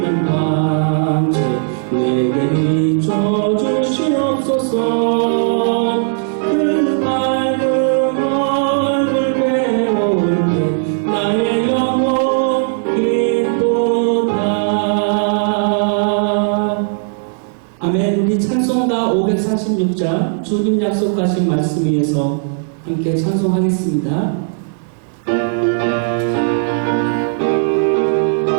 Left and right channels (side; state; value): left; silent; digital silence